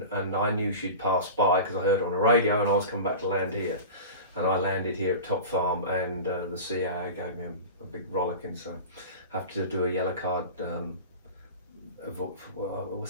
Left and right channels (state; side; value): inverted; both; correlation -0.32